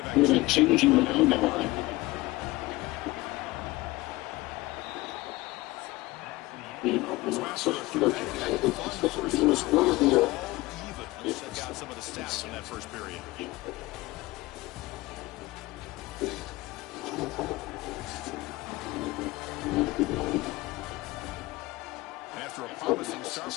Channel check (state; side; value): quieter; right; 20.3 dB